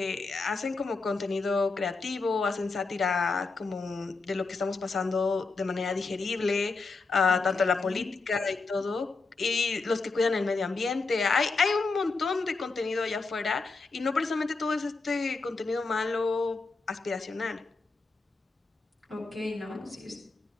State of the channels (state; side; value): quieter; right; 4.0 dB